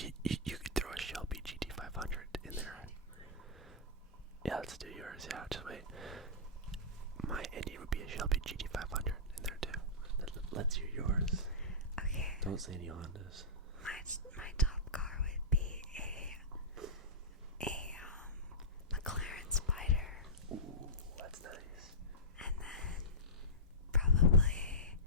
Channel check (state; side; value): normal; both; correlation -0.15